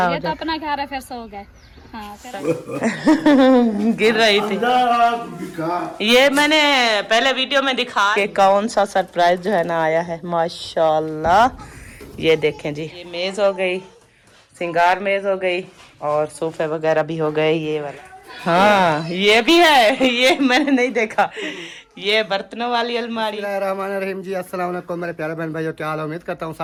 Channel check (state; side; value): identical; both; correlation 1.00